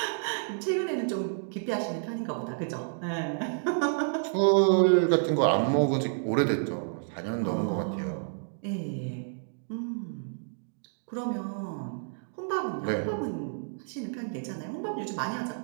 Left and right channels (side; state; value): left; silent; digital silence